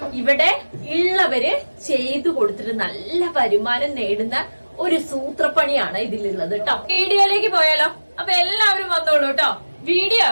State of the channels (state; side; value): inverted; both; correlation -1.00